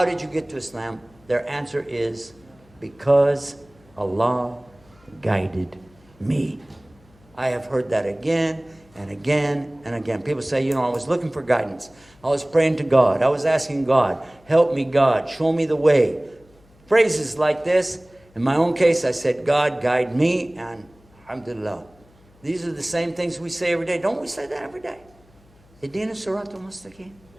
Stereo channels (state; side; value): noise; left; hum, 29 dB below the sound